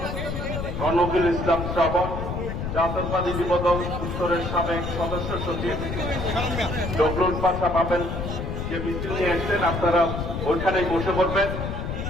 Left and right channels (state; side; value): noise; left; rumble, 4 dB below the sound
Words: রনকুল ইসলাম শ্রাবণ, জাতীয়তাবাদী যুব দল উত্তরের সাবেক সদস্য সচিব ডবলুল পাশা পাবেন যে মিছিল নিয়ে এসছেন। আপনারা ওইখানেই বসে পড়বেন।